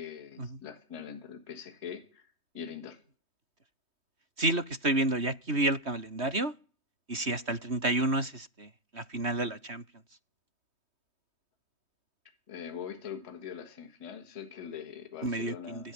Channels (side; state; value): left; late; 3.2 ms